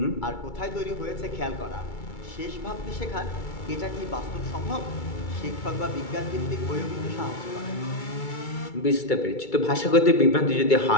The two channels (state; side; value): late; right; 2.3 ms